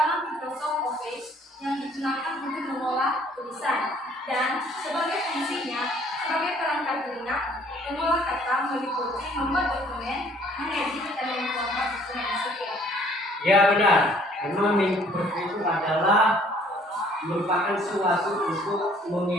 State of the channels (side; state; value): both; normal; correlation 0.59